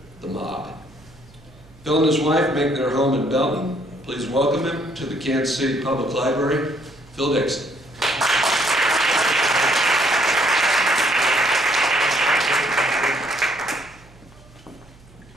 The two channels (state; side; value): noise; right; hum, 25 dB below the sound